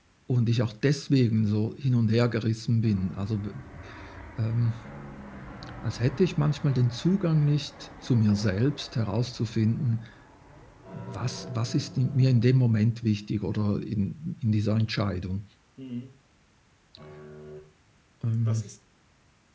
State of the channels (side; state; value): both; identical; correlation 1.00